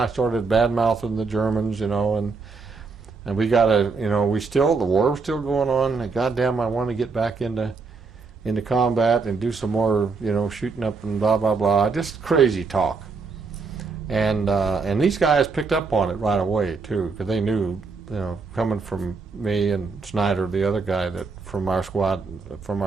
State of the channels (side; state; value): left; quieter; 4.6 dB